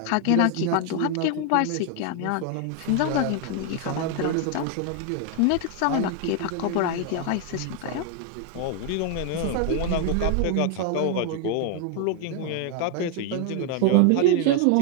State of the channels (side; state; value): both; different; correlation 0.01